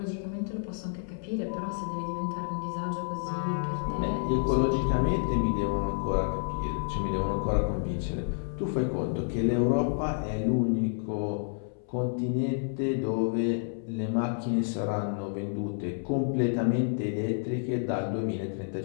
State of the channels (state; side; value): silent; right; 58 dB below the other